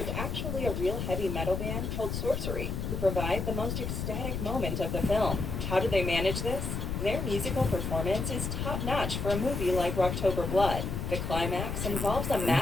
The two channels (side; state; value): left; noise; rumble, 3 dB below the sound